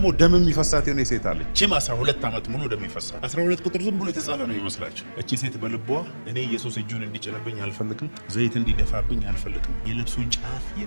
ደም የሚፈሳት የሆነ ሴት አለች። እቺም 12 ዓመት ሙሉ ደም ይፈሳት። 12 ቁጥር ዝም ብሎ የተጻፈ ነው ይመስላችሁ። እቺ ሴት በልቧ እኔ ኢየሱስ እጁን እንዲጭንብኝ አልፈልግም፣ ዘይት እንዲደፋብኝ አልፈልግም፣ የልብሱን ጫፍ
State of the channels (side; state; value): both; inverted; correlation -1.00